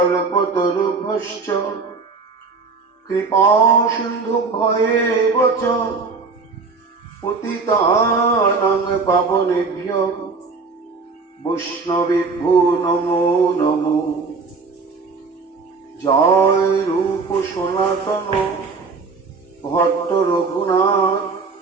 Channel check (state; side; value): quieter; left; 4.4 dB